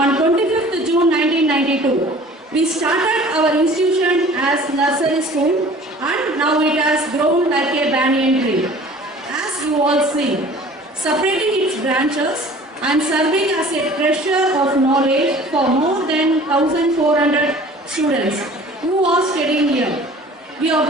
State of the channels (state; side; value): normal; both; correlation 0.47